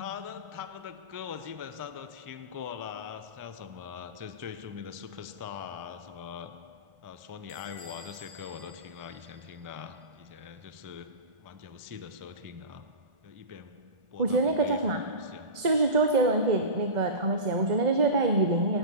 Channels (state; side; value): late; left; 1.4 ms